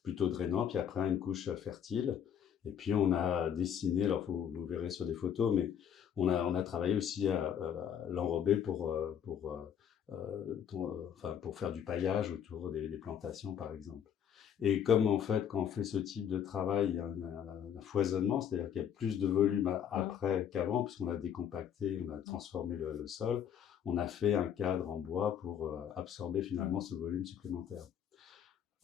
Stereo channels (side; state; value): right; quieter; 8.6 dB